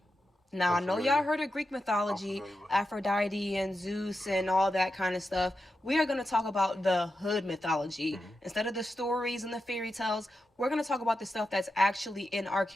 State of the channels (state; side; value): normal; both; correlation 0.89